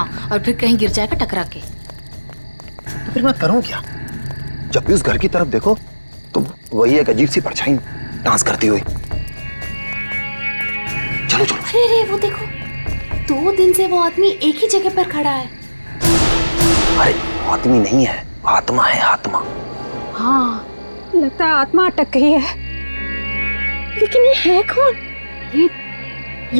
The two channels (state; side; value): inverted; both; correlation -1.00